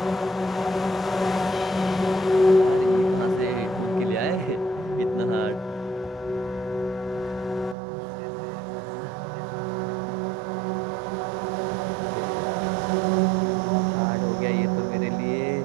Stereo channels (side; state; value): left; drops out; at 7.8 s